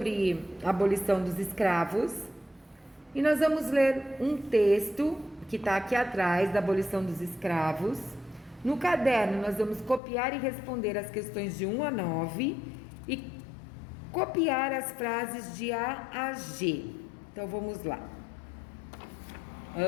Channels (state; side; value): drops out; right; at 10.0 s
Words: a abolição dos escravos. E nós vamos ler um texto que está aqui atrás da abolição dos escravos. No caderno nós vamos copiar e responder as questões de 1 a 9 e copiar as frases de A a G. Então vamos lá.